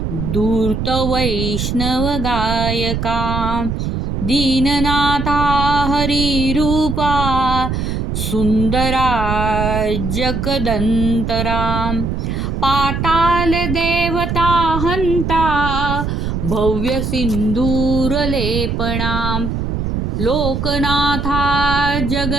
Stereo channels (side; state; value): right; noise; rumble, 2 dB below the sound